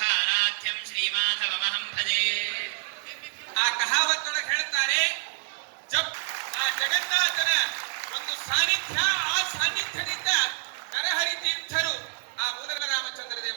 ಶ್ರೀಮಾಧವಮಹಂ ಭಜೆ. ಆ ಕಹಾವತ್ತೊಳಗೆ ಹೇಳ್ತಾರೆ, ಆ ಜಗನ್ನಾಥನ ಒಂದು ಸಾನ್ನಿಧ್ಯ, ಆ ಸಾನ್ನಿಧ್ಯದಿಂದ ನರಹರಿ ತೀರ್ಥರು, ಆ ಮೂಲಕ ರಾಮಚಂದ್ರ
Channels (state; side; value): silent; left; 60 dB below the other